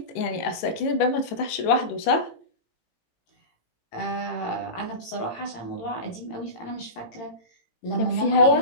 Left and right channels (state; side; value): late; right; 18 ms